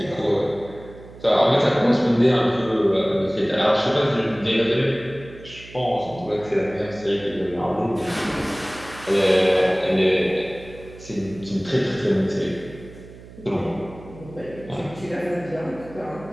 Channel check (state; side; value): noise; right; hum, 18 dB below the sound